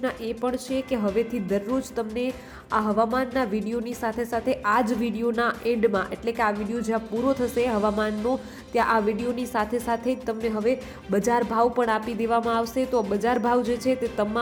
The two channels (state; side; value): identical; both; correlation 1.00